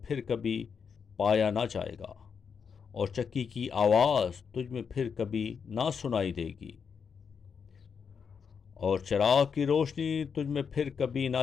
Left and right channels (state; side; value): quieter; right; 6.4 dB